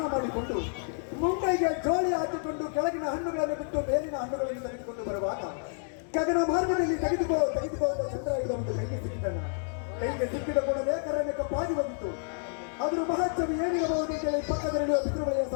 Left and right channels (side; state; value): right; silent; 58 dB below the other